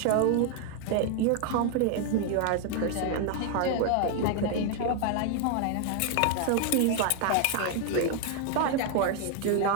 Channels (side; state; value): both; different; correlation 0.00